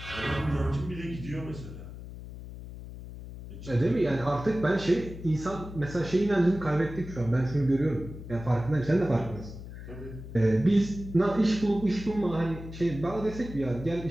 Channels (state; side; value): noise; left; hum, 12 dB below the sound